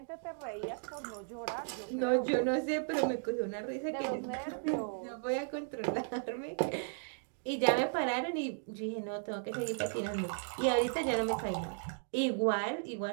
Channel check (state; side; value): silent; left; digital silence